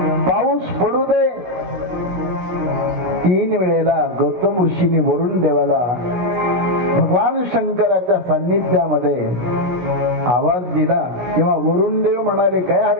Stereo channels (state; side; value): late; left; 17 ms